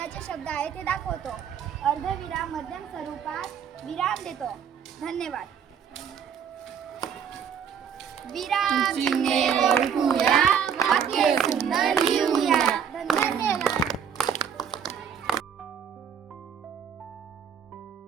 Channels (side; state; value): left; quieter; 7.7 dB